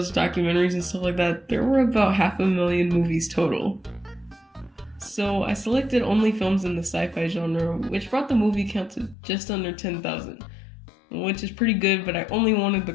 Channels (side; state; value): right; drops out; at 9.2 s